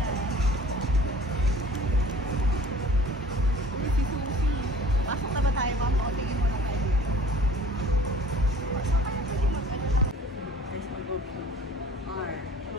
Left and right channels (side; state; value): both; normal; correlation 0.48